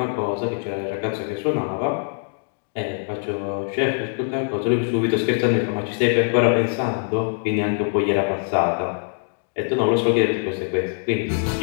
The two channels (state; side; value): silent; right; digital silence